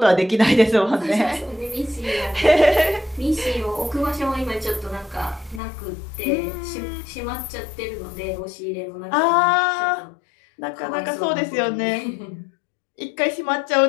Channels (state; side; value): drops out; right; at 5.6 s